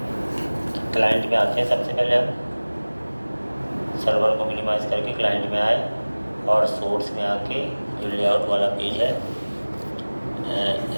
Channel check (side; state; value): both; inverted; correlation -1.00